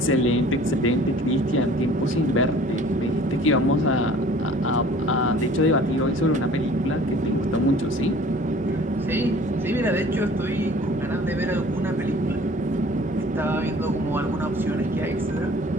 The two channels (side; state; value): both; normal; correlation 0.49